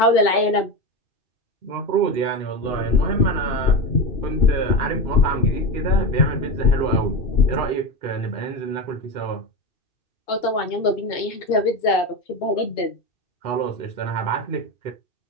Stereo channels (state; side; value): late; right; 2.8 ms